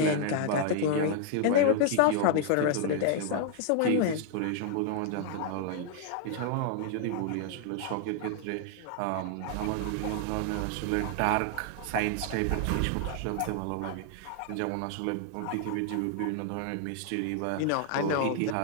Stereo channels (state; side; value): different; both; correlation 0.00